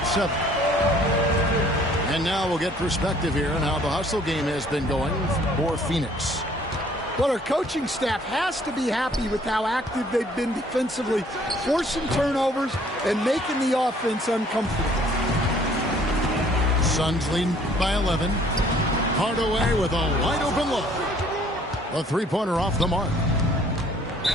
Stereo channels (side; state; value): both; normal; correlation 0.58